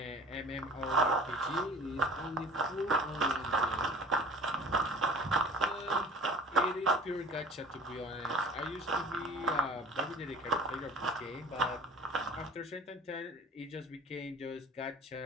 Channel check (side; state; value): both; normal; correlation 0.43